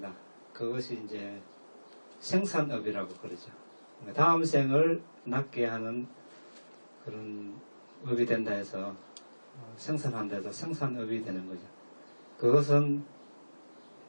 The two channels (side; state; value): both; inverted; correlation -1.00